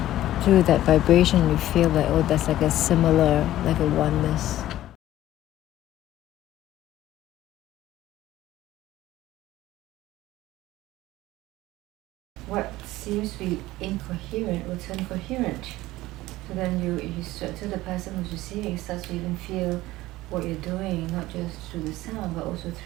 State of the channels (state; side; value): quieter; right; 5.7 dB